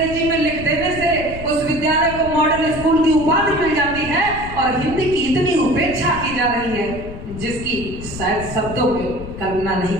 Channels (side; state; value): left; noise; rumble, 11 dB below the sound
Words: में लिख देने से उस विद्यालय को मॉडल स्कूल की उपाधि मिल जाती है और हिंदी की इतनी उपेक्षा की जा रही है जिसकी शायद शब्दों में कल्पना नहीं